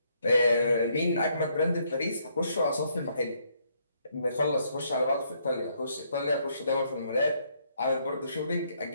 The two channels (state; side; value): inverted; both; correlation -0.71